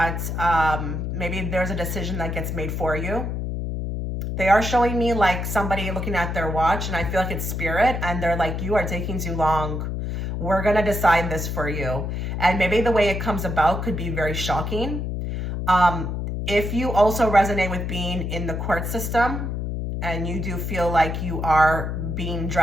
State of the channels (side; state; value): left; noise; hum, 3 dB below the sound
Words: maybe there's a decision that gets made for you. They are showing me like somebody looking at their watch, and I feel like it's spirit, and they're like, you are taking too long. We're going to decide this for you. And maybe the way it comes about could be very shocking. If you also resonate with being in the court system and you do feel like you are being